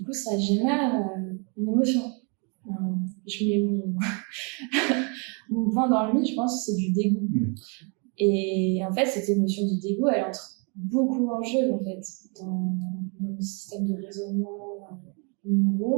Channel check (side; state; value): left; quieter; 35.2 dB